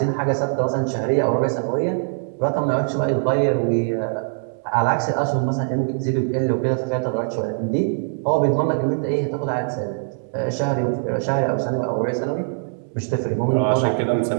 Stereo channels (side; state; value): left; silent; 64 dB below the other